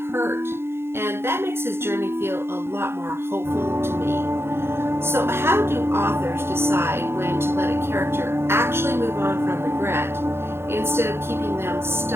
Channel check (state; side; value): late; left; 0.12 ms